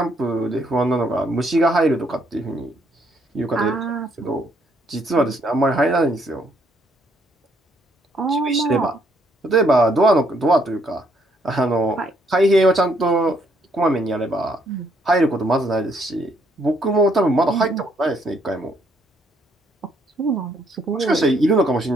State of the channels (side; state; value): both; normal; correlation 0.70